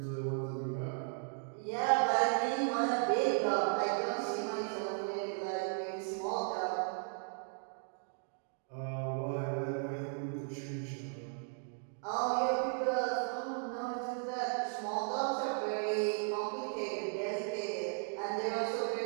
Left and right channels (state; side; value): silent; left; 54 dB below the other